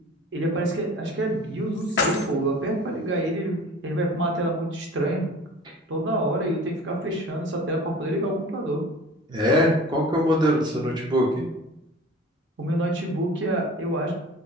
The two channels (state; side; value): normal; both; correlation 0.42